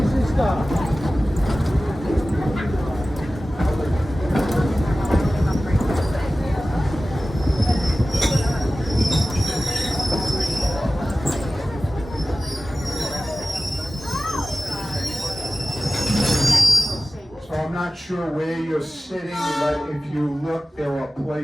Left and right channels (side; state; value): both; normal; correlation 0.96